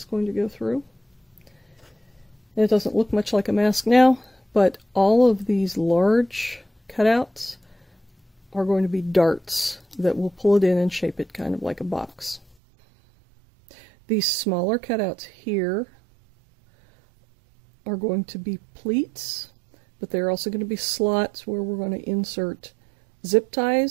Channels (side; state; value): left; drops out; at 12.6 s